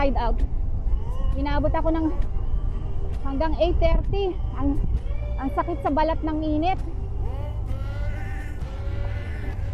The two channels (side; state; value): both; identical; correlation 1.00